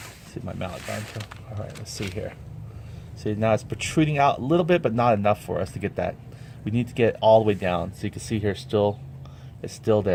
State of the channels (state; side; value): identical; both; correlation 1.00